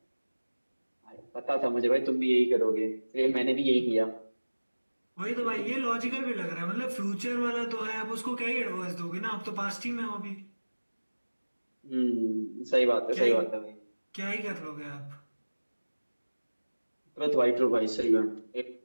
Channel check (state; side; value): inverted; both; correlation -1.00